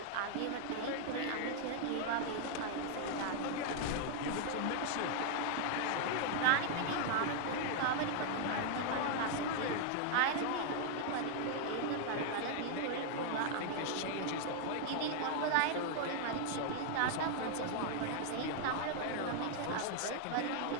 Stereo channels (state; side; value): different; both; correlation 0.00